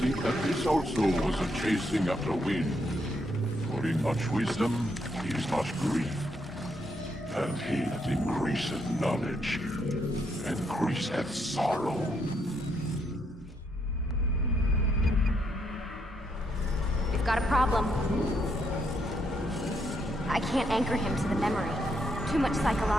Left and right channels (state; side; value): normal; both; correlation 0.76